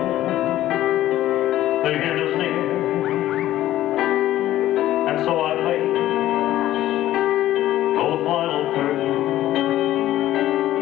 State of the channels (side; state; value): right; quieter; 14.0 dB